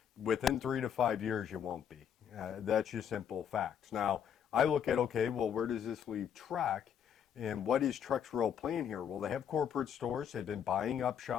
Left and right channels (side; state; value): right; quieter; 8.5 dB